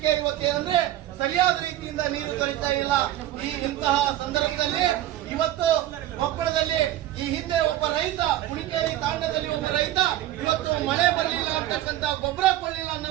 ಇವತ್ತೇನಂದ್ರೆ ಸರಿಯಾದ ರೀತಿಯಿಂದ ನೀರು ದೊರೀತಾ ಇಲ್ಲ. ಇಂತಹ ಸಂದರ್ಭದಲ್ಲಿ ಇವತ್ತು ಕೊಪ್ಪಳದಲ್ಲಿ ಈ ಹಿಂದೆ ಒಬ್ಬ ರೈತ, ಕುಣಿಕೇರಿ ತಾಂಡದಲ್ಲಿ ಒಬ್ಬ ರೈತ ಇವತ್ತು ಮಳೆ ಬರಲಿಲ್ಲ ಅಂತಕ್ಕಂತ, ಗೊಬ್ಬರ ಕೊಡಲಿಲ್ಲ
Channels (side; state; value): left; quieter; 13.8 dB